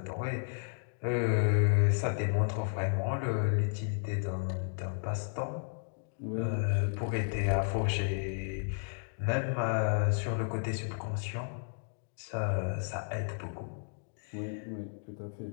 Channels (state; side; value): silent; right; digital silence